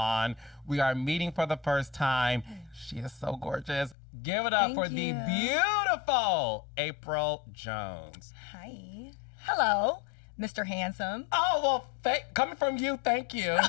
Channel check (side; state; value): right; drops out; at 4.0 s